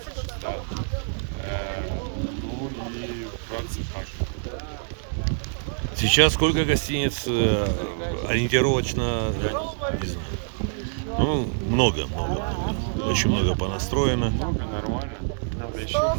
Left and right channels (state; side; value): silent; left; 61 dB below the other